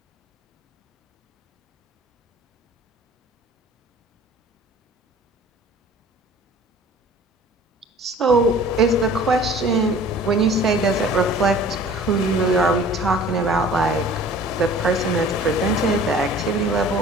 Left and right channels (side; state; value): both; normal; correlation 0.47